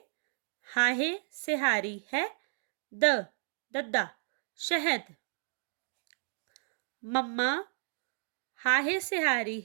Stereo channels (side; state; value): left; silent; digital silence